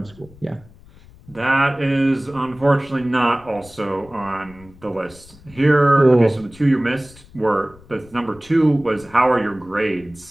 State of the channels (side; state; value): left; noise; rumble, 24 dB below the sound